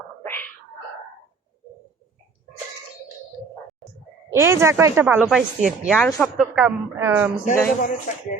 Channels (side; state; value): left; quieter; 4.8 dB